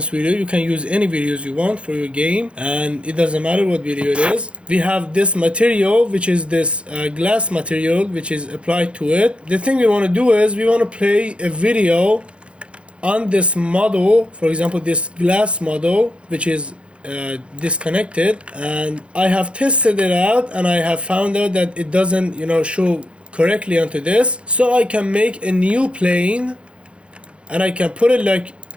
video. You can use any videos you want for your game, and it doesn't matter what video it is. We have this material, which is this glass material, which is applied to it. The thing we want to do is we want to play a video on this model, for example, this glass model, which is disconnected, and I have tested it out and I have found out that it doesn't show correctly onto this. So I can make a new plane and I can put it like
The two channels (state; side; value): late; left; 0.059 ms